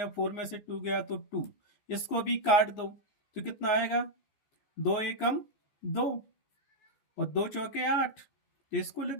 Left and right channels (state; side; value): late; right; 15 ms